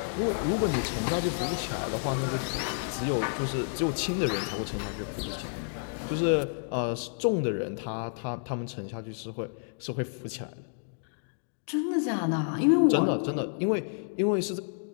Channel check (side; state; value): right; silent; digital silence